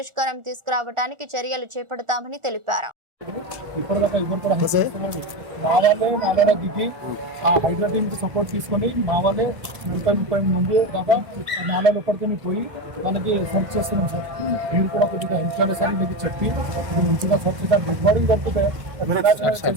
తీసుకురావడానికి చర్యలు చేపడతామని తెలిపారు. ఇప్పటిదాకా ఎవరు కూడా మా వాళ్ళే దిగి ఆ హైడ్రా టీమ్కి సపోర్ట్ తీసుకొని మా వాళ్ళే 30 మంది దాకా నాలుగు ఎప్పటికీ పోయి మనకి సెర్చ్ చేస్తున్నాం సార్. మీరు కూడా కొద్దిగా హెల్ప్ చేయాలి సార్, మీకు చెప్పి ఇది మంచిగా సెర్చ్ చేద్దాం. గుడ్ మార్నింగ్ పడుతుంది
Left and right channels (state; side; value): late; left; 1.4 ms